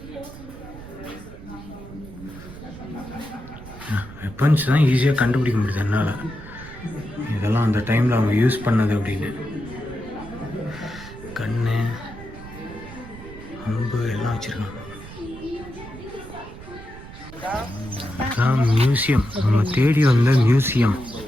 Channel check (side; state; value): right; noise; rumble, 15 dB below the sound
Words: வெப்பன்ஸ் தான் ஈஸியாக கண்டுபிடிக்க முடியுது என்னால். இதெல்லாம் அந்த டைமில் அவங்க யூஸ் பண்ணது அப்படின்னு. கண்ணு, அம்பு எல்லாம் வச்சுருக்காங்க. அதான் மியூசியம், நம்ம தேடி வந்த மியூசியம்.